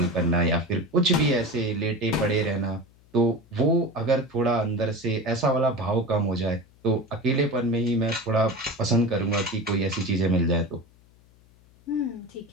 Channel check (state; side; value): noise; left; hum, 29 dB below the sound